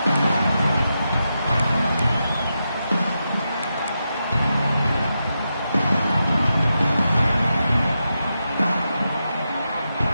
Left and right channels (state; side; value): inverted; both; correlation -0.87